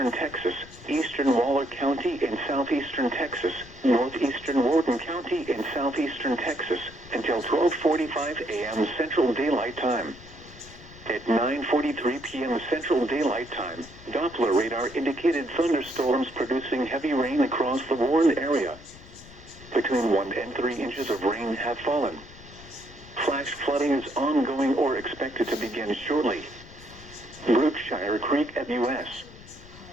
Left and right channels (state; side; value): noise; left; rumble, 19 dB below the sound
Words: Texas, eastern Waller County in southeastern Texas, northeastern Wharton County in southeastern Texas, until 12:45 a.m. Central Daylight Time. At 9:43 p.m. Central Daylight Time, Doppler radar indicated thunderstorms producing heavy rain across the Warren area. Between 1 and 3 inches of rain have fallen. Flash flooding is ongoing or expected to begin shortly. Brookshire Creek at U.S.